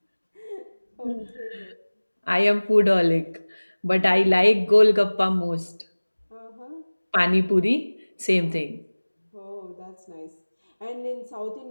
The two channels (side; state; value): both; inverted; correlation -1.00